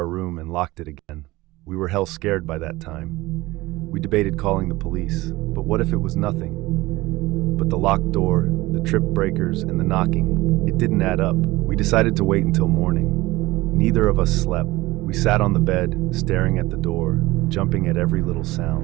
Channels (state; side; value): quieter; left; 19.6 dB